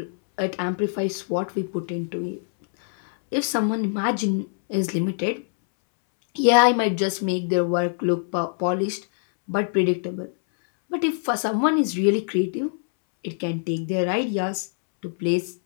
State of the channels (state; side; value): silent; right; 63 dB below the other